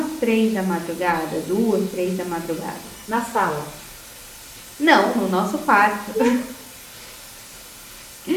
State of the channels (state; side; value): identical; both; correlation 1.00